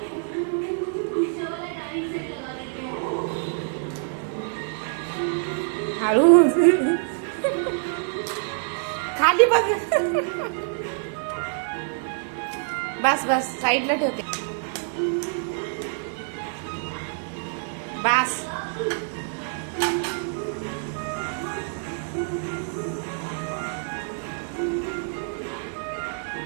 हळूच. खाली बघ. बस बस साईडला ठेवते. बस.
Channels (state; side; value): silent; left; 61 dB below the other